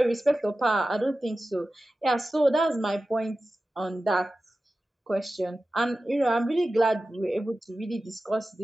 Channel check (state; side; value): normal; both; correlation 0.94